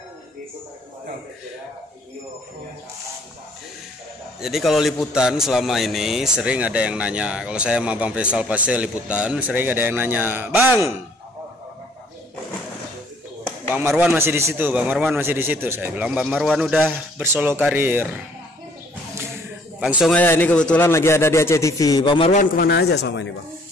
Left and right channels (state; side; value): normal; both; correlation 0.61